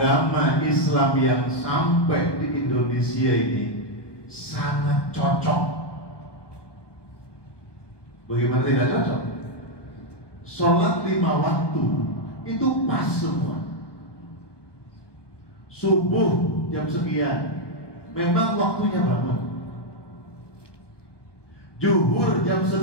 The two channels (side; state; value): right; late; 1.2 ms